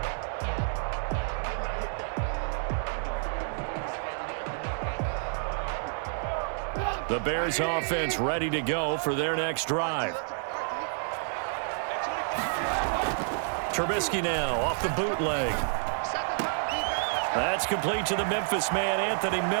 The Bears offense ready to go for their next drive. Trubisky now off the bootleg. That's complete to the Memphis man, Anthony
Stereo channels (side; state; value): left; silent; digital silence